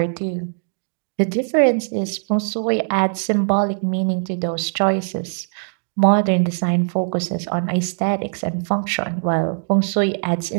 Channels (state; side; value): silent; left; digital silence